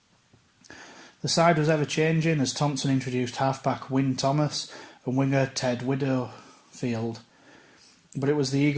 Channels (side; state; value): both; identical; correlation 1.00